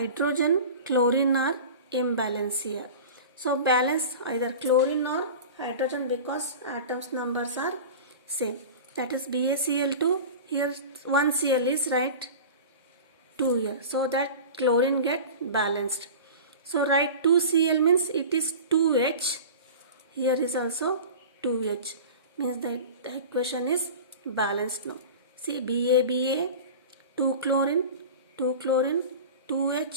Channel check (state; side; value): inverted; both; correlation -0.34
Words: chlorine are imbalanced here. So balance either chlorine or hydrogen because atoms numbers are same. That is BaCl2. Here 1 Cl is right, 2 here, so that chlorine get balanced. So write 2Cl means it is 2H. Here is also 2H, means the equation is balanced now. See, Ba 2 chlorine